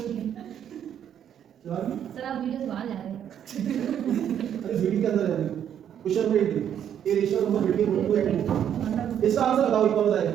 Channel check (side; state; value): left; quieter; 9.5 dB